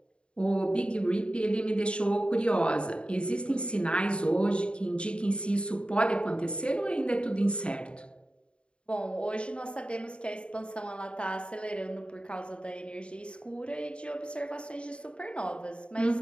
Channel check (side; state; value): right; late; 0.055 ms